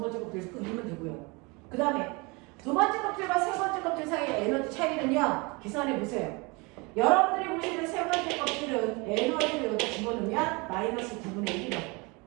껍질에서 끄면 되고요. 그 다음에 두 번째 껍질과 세 번째 껍질 사이의 에너지 차이는요. 계산해 보세요. 여러분들이 보시는 세 번째 껍질은 에너지를 여기다 집어넣으면 마이너스 9분의 1이라고.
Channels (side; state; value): left; quieter; 27.6 dB